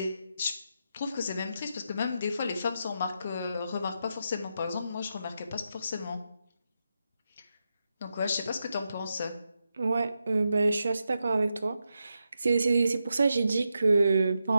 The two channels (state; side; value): inverted; both; correlation -0.86